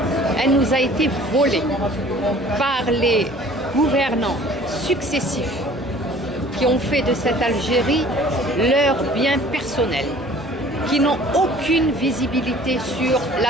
Elle nous a été volée par les gouvernants successifs qui ont fait de cette Algérie leur bien personnel, qui n'ont aucune visibilité sur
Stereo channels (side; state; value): both; normal; correlation 0.50